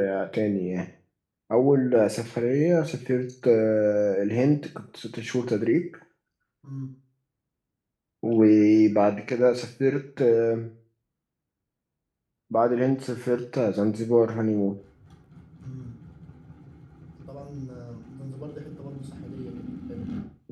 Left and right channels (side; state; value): both; identical; correlation 1.00